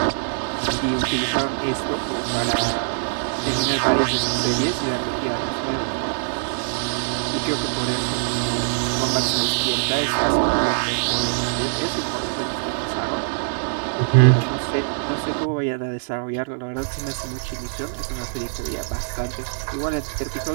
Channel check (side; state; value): left; silent; 63 dB below the other